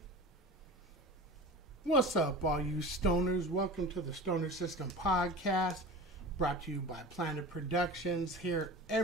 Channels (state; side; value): normal; both; correlation 0.34